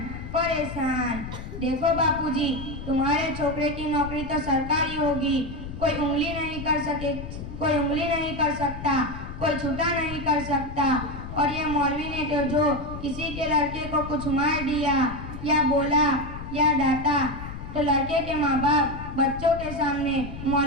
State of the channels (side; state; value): left; noise; rumble, 10 dB below the sound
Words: परेशान। देखो बापूजी, तुम्हारे छोकरे की नौकरी तो सरकारी होगी, कोई उंगली नहीं कर सकता, कोई छुटा नहीं कर सकता, और ये मौलवी ने तो जो किसी के लड़के को कुछ मार दिया या बोला या डांटा तो लड़के के माँ बाप बच्चों के सामने